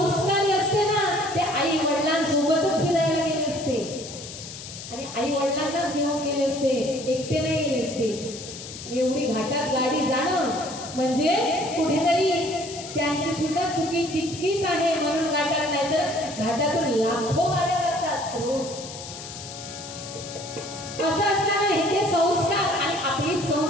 असते ना ते आई वडिलांसोबतच फिरायला गेले असते आणि आई वडिलांनाच घेऊन गेले असते, एकटे नाही गेले असते. एवढी घाटात गाडी जाणं म्हणजे कुठेतरी त्यांची सुद्धा चुकी तितकीच आहे म्हणून घाटात, नाही तर घाटातून लाखो गाड्या जातात रोज. असं असताना हे संस्कार आणि आपली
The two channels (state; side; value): noise; left; hiss, 12 dB below the sound